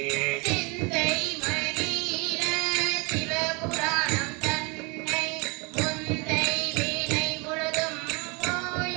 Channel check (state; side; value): quieter; left; 29.3 dB